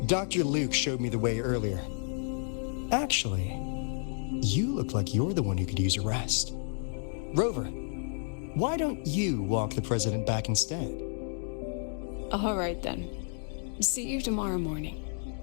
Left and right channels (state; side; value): silent; right; 57 dB below the other